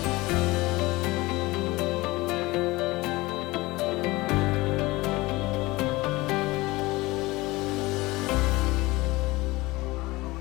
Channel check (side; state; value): right; quieter; 21.1 dB